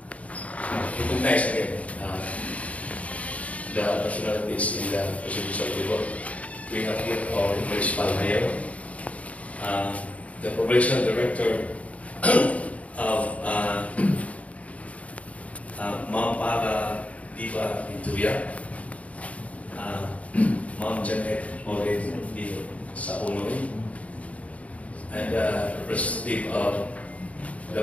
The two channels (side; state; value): right; late; 0.067 ms